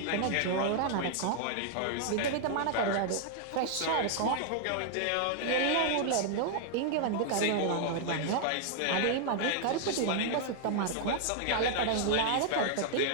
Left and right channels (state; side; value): different; both; correlation 0.00